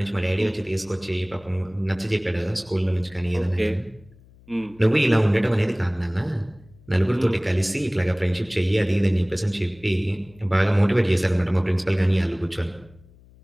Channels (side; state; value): left; noise; hum, 26 dB below the sound